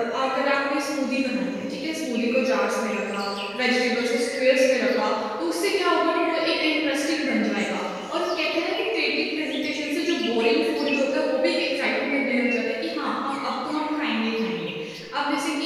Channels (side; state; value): both; identical; correlation 1.00